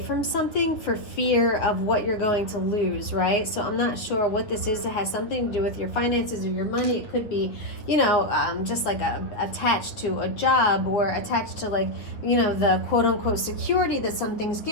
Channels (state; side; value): late; right; 9.0 ms